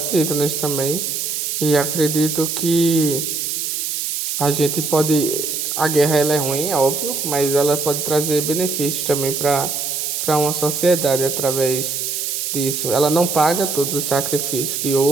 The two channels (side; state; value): right; noise; hiss, 2 dB below the sound